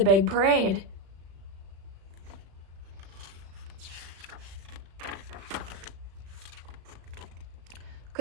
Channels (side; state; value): left; late; 36 ms